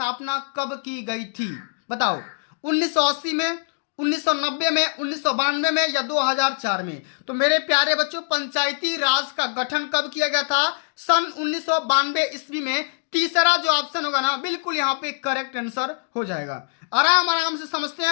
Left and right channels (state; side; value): silent; right; digital silence